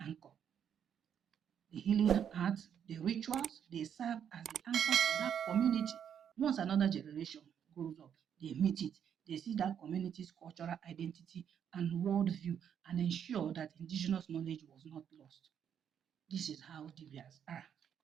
The healing arts, the rituals, they serve as the anchor for that community. Once another generation grows up, they meet it, they see that community's cultural identity and worldview and ensure that indigenous knowledge was not lost. This is how Dibias are,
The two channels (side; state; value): left; quieter; 8.5 dB